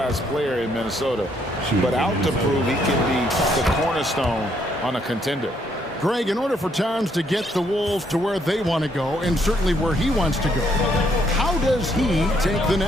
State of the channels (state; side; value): normal; both; correlation 0.71